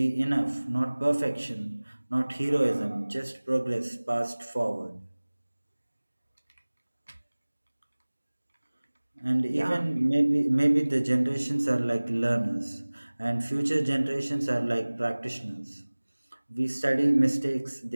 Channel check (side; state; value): both; inverted; correlation -1.00